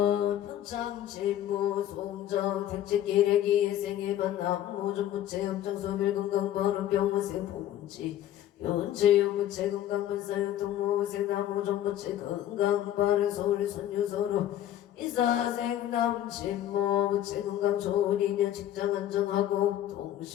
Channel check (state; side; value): quieter; right; 12.0 dB